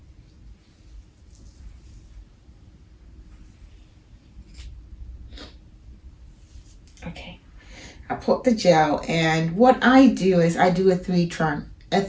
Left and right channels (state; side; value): identical; both; correlation 1.00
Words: Okay, I put the gel, and what I do is I do a